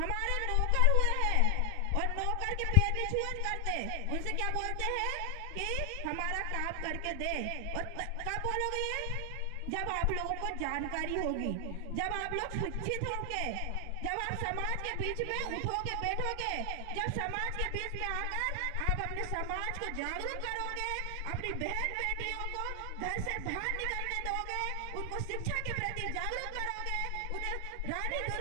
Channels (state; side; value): different; both; correlation 0.00